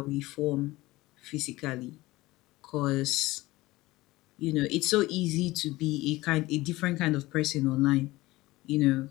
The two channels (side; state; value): right; quieter; 19.3 dB